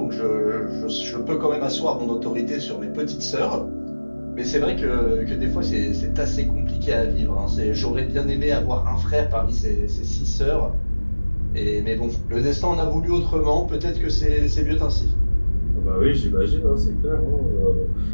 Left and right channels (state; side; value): inverted; both; correlation -1.00